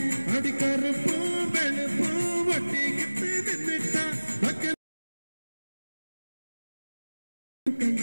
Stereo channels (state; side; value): inverted; both; correlation -1.00